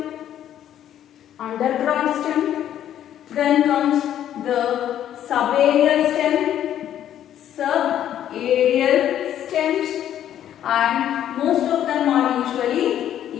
Then comes the subaerial stem, subaerial stems, and most of them are usually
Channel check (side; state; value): right; quieter; 10.9 dB